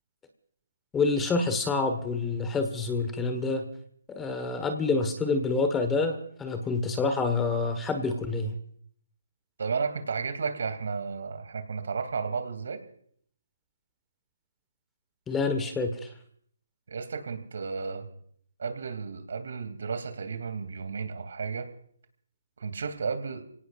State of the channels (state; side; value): normal; both; correlation -0.12